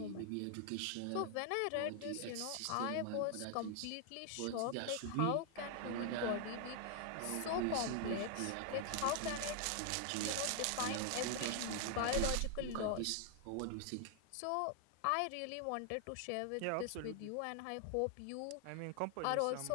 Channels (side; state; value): both; different; correlation 0.00